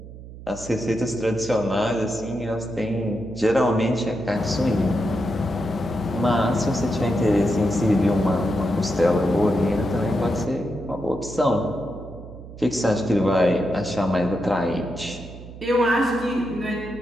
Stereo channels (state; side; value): noise; right; hum, 15 dB below the sound